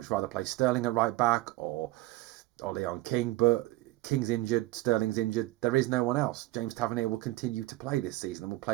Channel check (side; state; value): left; quieter; 18.0 dB